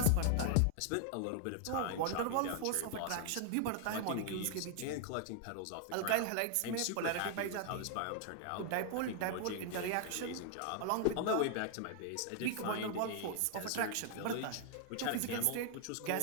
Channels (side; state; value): both; different; correlation 0.00